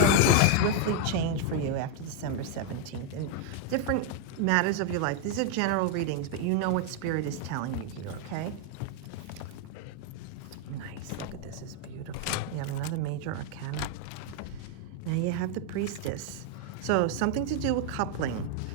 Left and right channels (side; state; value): both; different; correlation 0.01